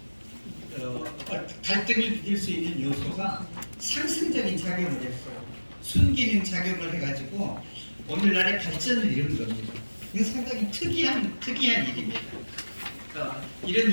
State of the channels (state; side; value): inverted; both; correlation -1.00